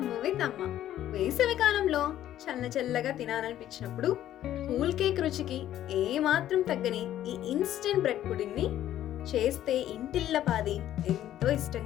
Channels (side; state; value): right; quieter; 12.2 dB